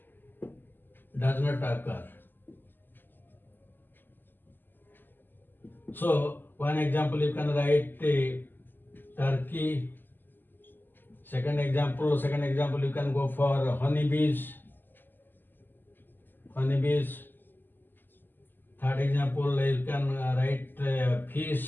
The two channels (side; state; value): right; late; 0.092 ms